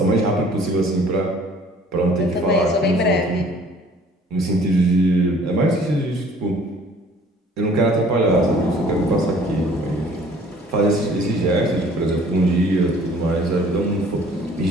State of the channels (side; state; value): both; normal; correlation 0.54